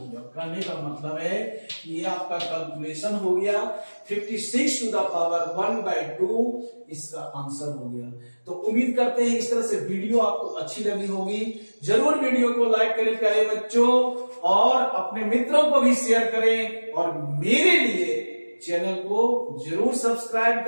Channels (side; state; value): both; inverted; correlation -1.00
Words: कहने का मतलब है कि ये आपका कैलकुलेशन हो गया, 56 टू द पावर 1/2 इसका आंसर हो गया। तो उम्मीद करते हैं इस तरह से वीडियो आपको अच्छी लगी होगी। जरूर वीडियो को लाइक करें प्यारे बच्चों, और अपने मित्रों को भी शेयर करें, और मेरे लिए चैनल को जरूर सब्सक्राइब